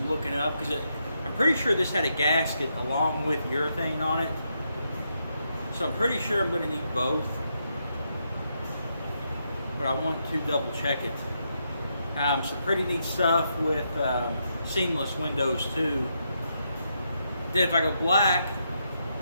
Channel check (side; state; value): both; inverted; correlation -0.80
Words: looking up because I'm pretty sure this had a gasket along with urethane on it. So I'm pretty sure I'm going to need both. But I want to double check it. Some pretty neat stuff with seamless windows too. Then if I go black,